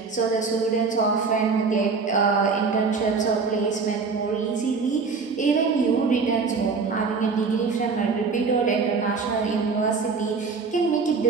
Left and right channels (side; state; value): left; quieter; 4.8 dB